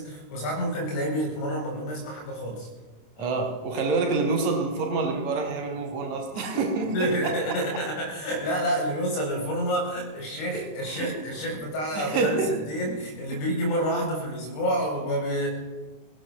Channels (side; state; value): right; late; 26 ms